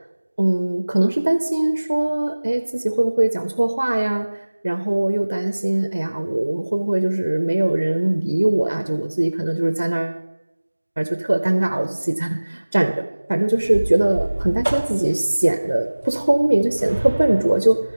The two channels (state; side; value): inverted; both; correlation -1.00